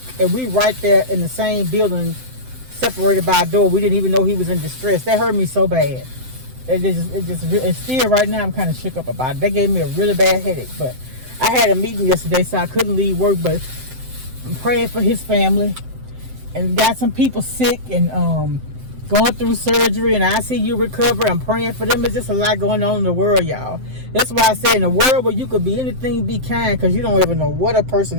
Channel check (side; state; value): left; late; 7.8 ms